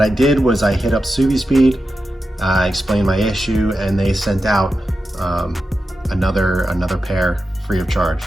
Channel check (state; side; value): normal; both; correlation 0.90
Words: I did was I hit up Subispeed, explained my issue, and they sent out another pair free of charge,